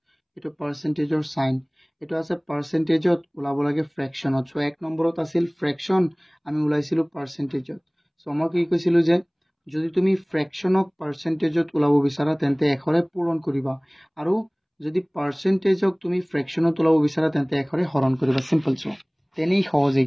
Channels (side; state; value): both; identical; correlation 1.00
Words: এটো পাৰ্সেন্টেজৰ সাইন এটো আছে পাৰ্সেন্টেজত ওলাব লাগে ফ্ৰেকশনত সো 1 নম্বৰত আছিল ফ্ৰেকশন আমি ওলাইছিলো পাৰ্সেন্টেজত সো মই কি কৈছিলো যে যদি তুমি ফ্ৰেকশনক পাৰ্সেন্টেজত ওলাব বিচাৰা তেন্তে 1 ৰে পূৰণ কৰিবা আৰু যদি পাৰ্সেন্টেজক তুমি ফ্ৰেকশনত ওলাব বিচাৰা তেন্তে 1 ৰে হৰণ কৰিবা সিম্পল সো তেনেই সহজ